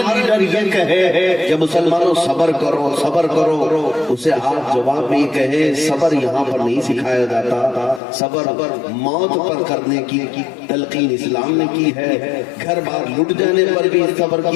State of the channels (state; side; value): drops out; right; at 8.0 s